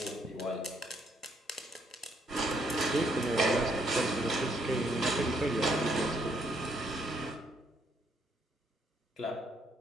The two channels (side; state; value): both; normal; correlation 0.71